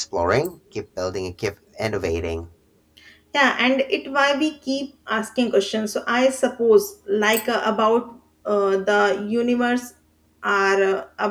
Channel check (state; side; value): identical; both; correlation 1.00